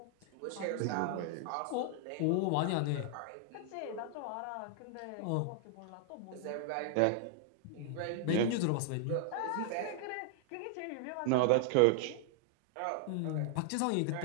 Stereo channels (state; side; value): different; both; correlation 0.00